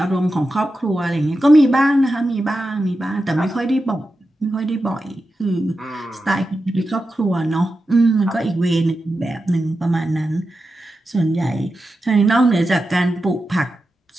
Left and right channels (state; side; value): normal; both; correlation 0.91